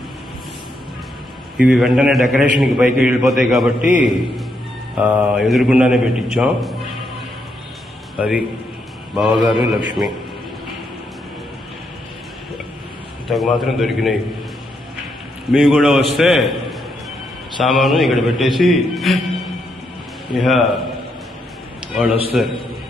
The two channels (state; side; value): normal; both; correlation 0.79